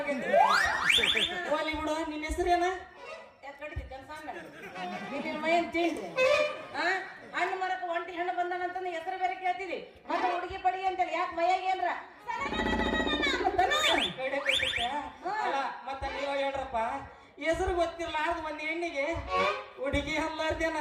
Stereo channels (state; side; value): identical; both; correlation 1.00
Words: ಹೋಲಿ ಬಿಡು ನಿನ್ನ ಹೆಸರೇನ ಯಾಕೆ ಕಡಿತಿ ಕನ್ಸಂಗ ನಿನ್ನ ಮೈನ್ ತಿಂಡಿ ಹಣ್ಣು ಮರಕ್ಕೆ ಒಂಟಿ ಹಣ್ಣು ಬಂದಾನಂತಂದು ಹೆಸರು ಬೇರೆ ಕೇಳ್ತೀವಿ ಮತ್ತೆ ಹುಡುಗಿ ಪಡಿ ಅಂತೇಳಿ ಯಾಕೆ ಮೈಯಾಗ ಏನ್ರ ಮತ್ತ ನೀವ ಹೇಳ್ರಪ್ಪ ಹೆಸರು ಗೊತ್ತಿರ್ಲಾರ್ದ ಒಂದ್ ಹೆಣ್ಣಿಗೆ ಹುಡುಗಿ ಅಲ್ಲಾರ್ದೇನ